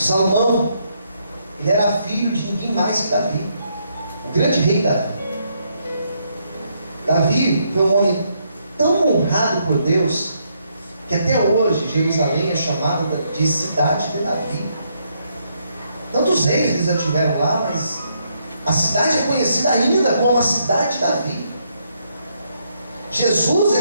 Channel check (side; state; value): both; inverted; correlation -0.75